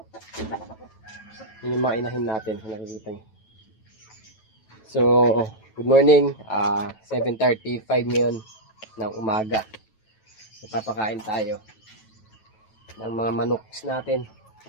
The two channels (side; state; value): right; late; 9.1 ms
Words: Yun yung mga inahin natin. Nakikita nyo. So, good morning. 7:35 ngayon ng umaga. Papakain tayo ng mga manok natin.